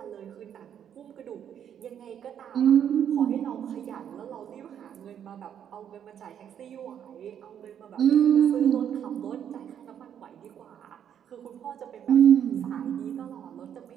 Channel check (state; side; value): quieter; left; 9.2 dB